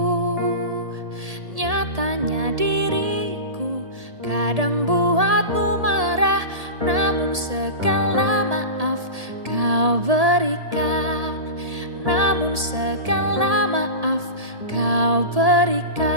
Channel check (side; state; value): left; late; 1.8 ms